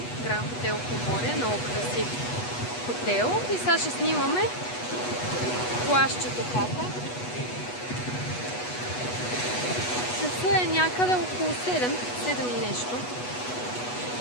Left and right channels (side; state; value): right; late; 8.2 ms